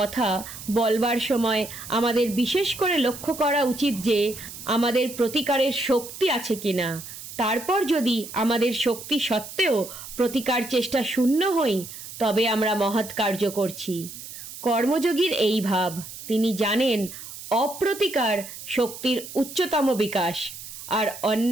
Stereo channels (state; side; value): noise; right; hiss, 12 dB below the sound